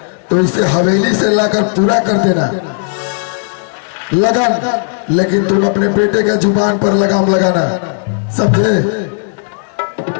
तो इसे हवेली से लाकर पूरा कर देना लगन, लेकिन तुम अपने बेटे के जुबान पर लगाम लगाना, समझे?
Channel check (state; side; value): silent; right; digital silence